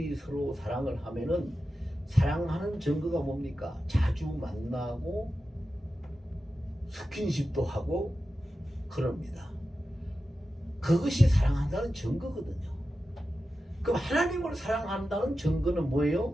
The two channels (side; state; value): both; normal; correlation 0.92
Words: 서로 사랑을 하면은 사랑하는 증거가 뭡니까? 자주 만나고 스킨십도 하고 그럽니다. 그것이 사랑한다는 증거거든요. 그럼 하나님을 사랑한다는 증거는